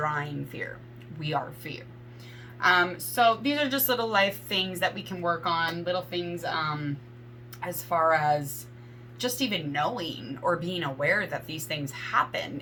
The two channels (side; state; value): both; identical; correlation 1.00